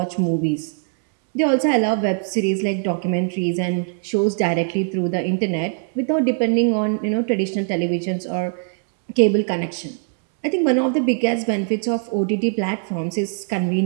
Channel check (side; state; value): left; silent; 60 dB below the other